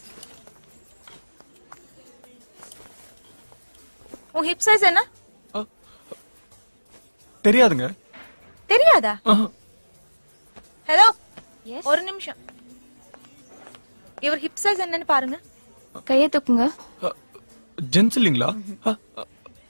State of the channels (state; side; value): inverted; both; correlation -1.00